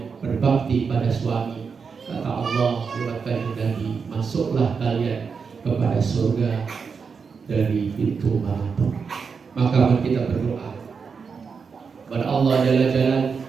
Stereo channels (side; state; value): left; quieter; 5.6 dB